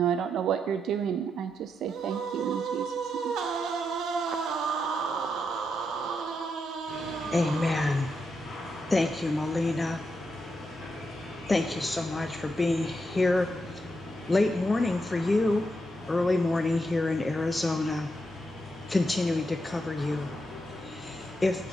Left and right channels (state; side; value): normal; both; correlation 0.83